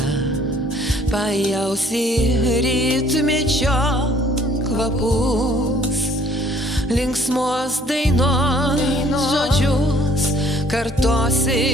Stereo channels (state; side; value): normal; both; correlation 0.59